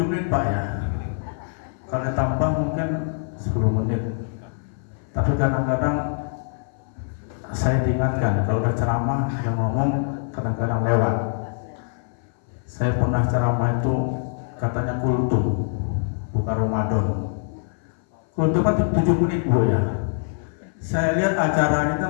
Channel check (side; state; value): right; silent; 58 dB below the other